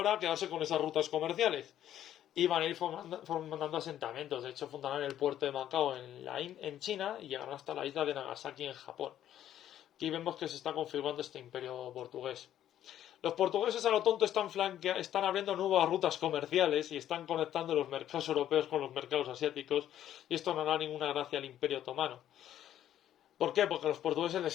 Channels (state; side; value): quieter; right; 11.4 dB